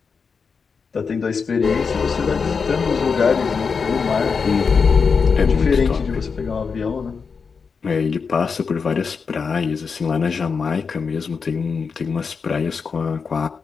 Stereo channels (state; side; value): quieter; right; 5.4 dB